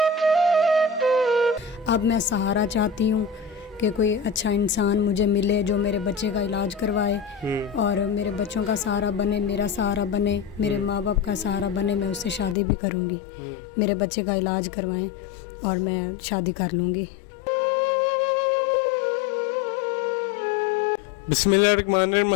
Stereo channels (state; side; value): drops out; right; at 12.6 s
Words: अब मैं सहारा चाहती हूँ कि कोई अच्छा इंसान मुझे मिले जो मेरे बच्चे का इलाज करवाए और मेरे बच्चों का सहारा बने, मेरा सहारा बने, मेरे माँ बाप का सहारा बने। मैं उससे शादी भी करूँगी, मेरे बच्चे का इलाज करवाएं और मैं शादी कर लूँगी। बिस्मिल्लाहिर्रहमानिर्रहीम,